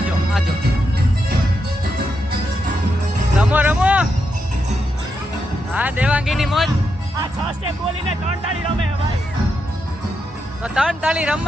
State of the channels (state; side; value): normal; both; correlation 0.83